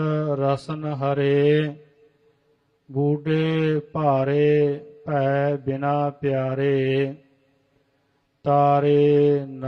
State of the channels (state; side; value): identical; both; correlation 1.00